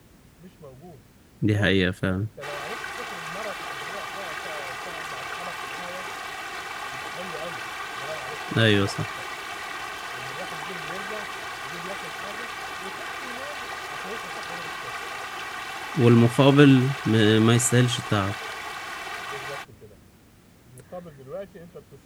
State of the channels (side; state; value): both; identical; correlation 1.00